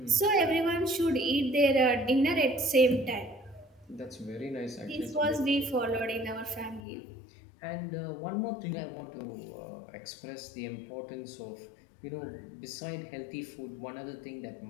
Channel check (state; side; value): drops out; right; at 6.8 s